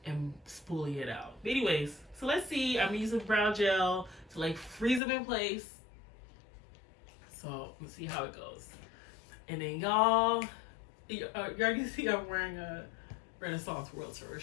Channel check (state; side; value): drops out; right; at 5.0 s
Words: and spoolie it out. But anyways, so let's see. I'm using brow gel to like freeze them in place. So let's see how it goes. And then y'all, you already see I'm wearing a Renaissance World Tour